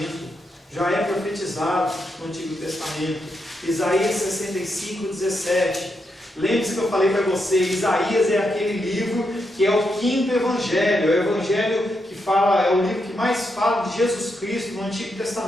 Já é profetizado no Antigo Testamento. Isaías 65, 17. Lembre-se que eu falei para você, Isaías é aquele livro que é o quinto evangelho. É o evangelho que fala, é o livro que mais fala de Jesus Cristo no Antigo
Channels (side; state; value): both; normal; correlation 0.82